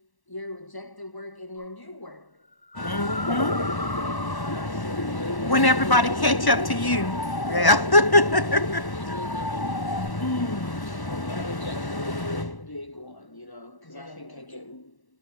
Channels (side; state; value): right; late; 1.1 ms